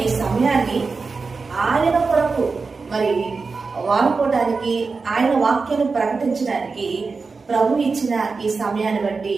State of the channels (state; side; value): quieter; left; 4.4 dB